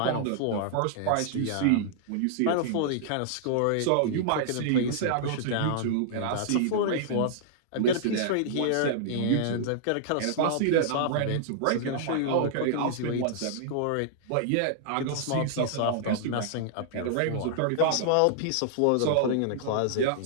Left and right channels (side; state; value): both; different; correlation -0.01